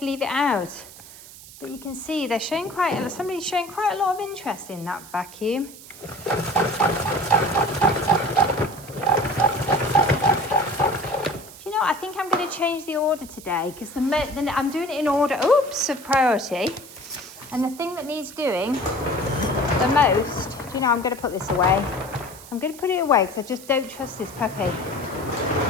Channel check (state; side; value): noise; right; hiss, 18 dB below the sound